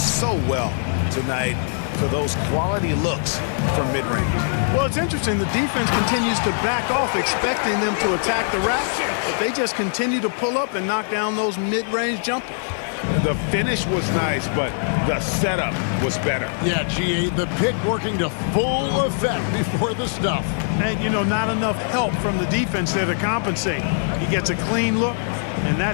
well tonight for those quality looks from mid-range. Well, it's interesting. The defense continues to back off, expecting them to attack the rack, but they just continue to pull up and knock down those mid-range jumpers. The finish was nice, but the setup was better. Yeah, GA, the pick working to full effect before the stuff. And, you know, not enough help from the defense there to compensate. He gets a clean look, and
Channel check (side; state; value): right; silent; 60 dB below the other